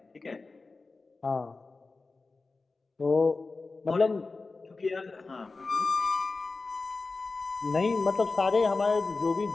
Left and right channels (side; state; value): right; quieter; 3.8 dB